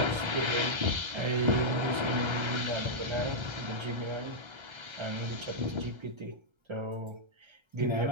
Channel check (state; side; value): late; left; 1.3 ms